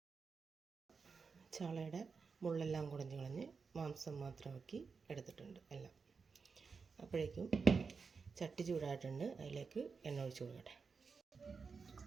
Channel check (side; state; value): left; quieter; 5.1 dB